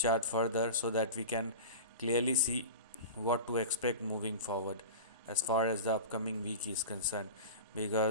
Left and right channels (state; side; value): inverted; both; correlation -0.30